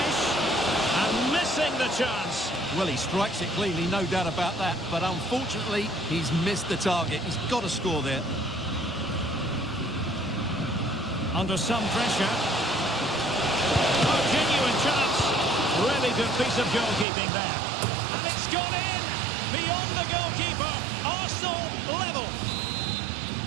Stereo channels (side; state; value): left; drops out; at 17.1 s